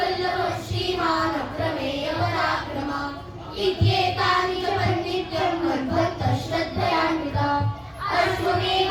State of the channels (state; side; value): identical; both; correlation 1.00